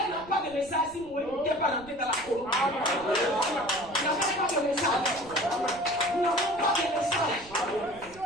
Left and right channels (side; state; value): right; noise; rumble, 22 dB below the sound